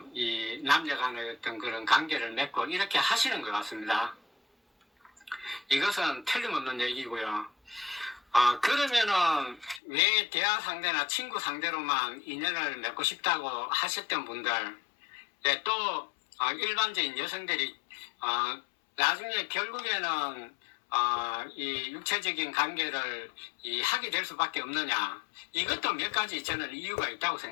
이 남녀 간의 어떤 그런 관계를 맺고 이렇게 하시는 것 같습니다. 이것은 틀림없는 얘기고요. 그러면은 왜 대화 상대나 친구 상대로만 인연을 맺고 싶다고 하셨던 분들, 네, 또 일반적인 여성들이 나중에 결국에는 이 육체적인 관계를 하게 될 수밖에 없느냐? 이것도 몇 가지 저는 이유가 있다고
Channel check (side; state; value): right; drops out; at 9.8 s